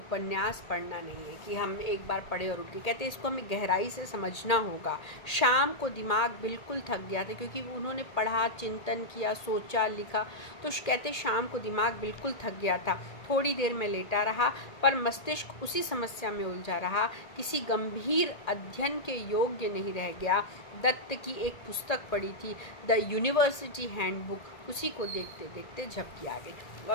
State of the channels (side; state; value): right; late; 1.8 ms